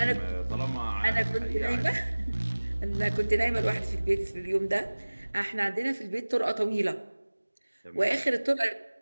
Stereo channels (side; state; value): both; inverted; correlation -1.00